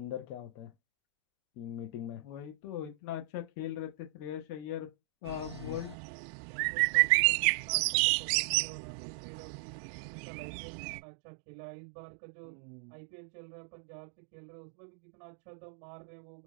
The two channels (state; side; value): drops out; left; at 6.0 s